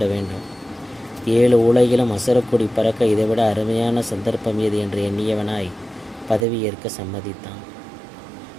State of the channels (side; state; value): left; drops out; at 6.5 s